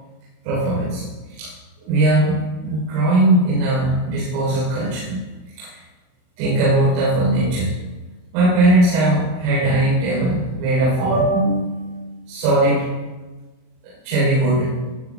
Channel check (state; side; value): late; left; 39 ms